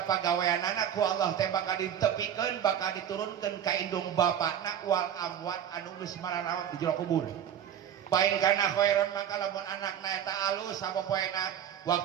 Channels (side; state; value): left; quieter; 9.5 dB